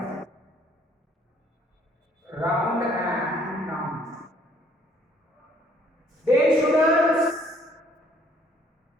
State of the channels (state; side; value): normal; both; correlation 0.61